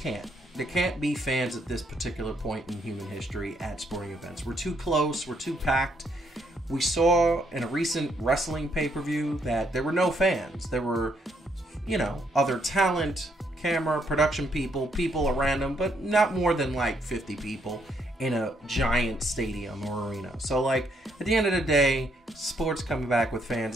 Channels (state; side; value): normal; both; correlation 0.73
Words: can't. There can't be fans at this particular point in human history at sporting events. We're too close. We're too packed. We saw in a recent wrestling pay-per-view that there were no fans. There were, you know, other talent, camera, production people around them, but not more than like 50 people in a giant stadium or arena. So like at the end of the day, sports coming back with fans